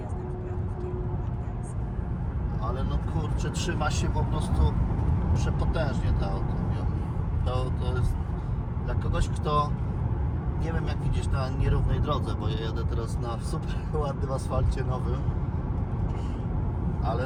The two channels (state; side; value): identical; both; correlation 1.00